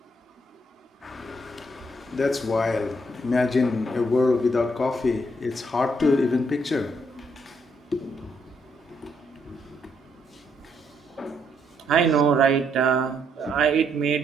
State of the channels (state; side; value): normal; both; correlation 0.73